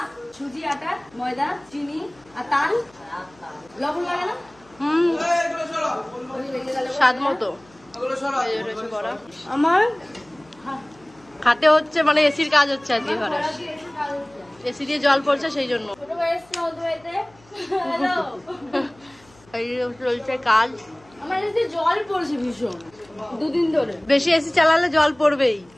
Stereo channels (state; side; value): noise; left; hum, 29 dB below the sound